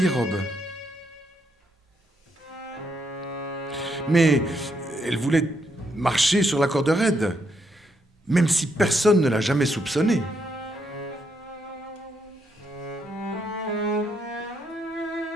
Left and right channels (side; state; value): both; normal; correlation 0.77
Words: robe. Mais elle voulait marcher sur la corde raide, même si personne ne l'a jamais soupçonné.